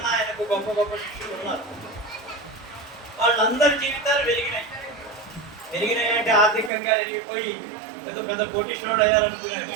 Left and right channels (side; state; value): left; drops out; at 6.7 s